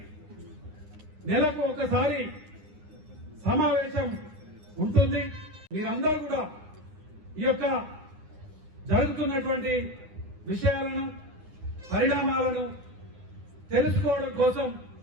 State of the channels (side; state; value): left; late; 9.8 ms